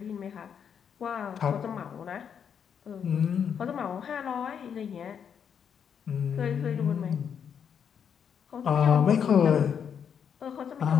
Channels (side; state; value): right; quieter; 7.6 dB